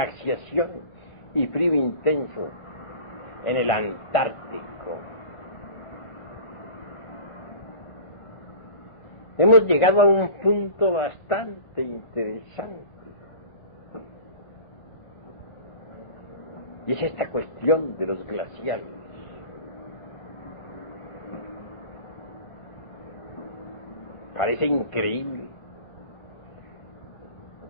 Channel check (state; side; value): late; right; 1.5 ms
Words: y frío intenso en el Antártico. Hemos llegado a un punto bastante interesante, y es esta cuestión de los glaciares. Parece increíble